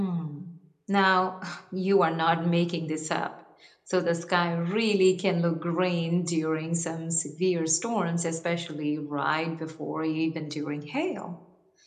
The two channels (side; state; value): both; identical; correlation 1.00